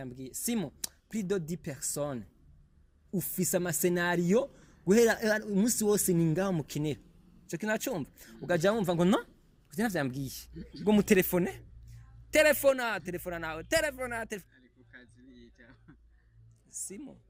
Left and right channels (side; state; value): both; identical; correlation 1.00